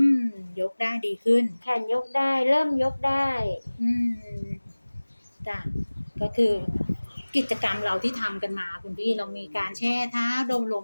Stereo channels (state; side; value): inverted; both; correlation -1.00